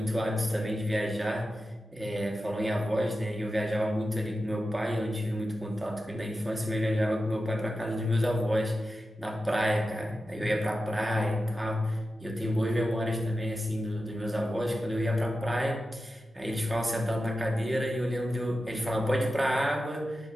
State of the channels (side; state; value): both; normal; correlation 0.92